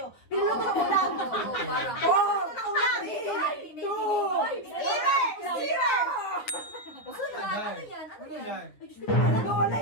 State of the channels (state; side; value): late; right; 9.8 ms